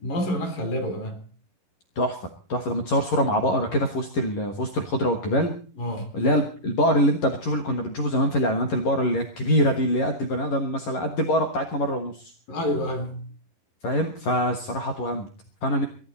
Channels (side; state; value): right; late; 11 ms